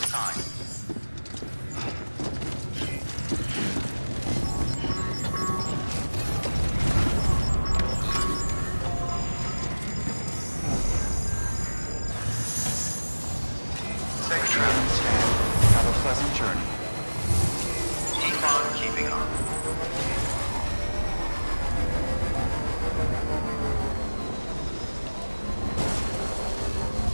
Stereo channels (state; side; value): inverted; both; correlation -1.00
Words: Safe travel, Stan. Have a pleasant journey. Keep on keeping on.